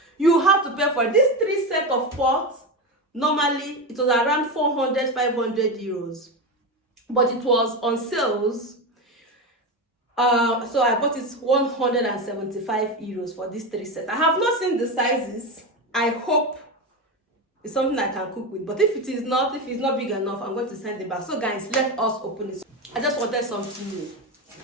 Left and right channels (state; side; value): normal; both; correlation 0.17